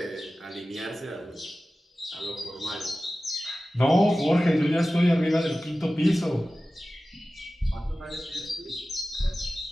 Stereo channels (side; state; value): both; normal; correlation 0.96